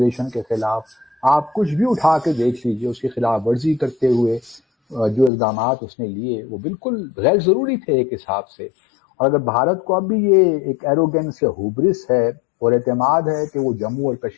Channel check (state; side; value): drops out; right; at 5.3 s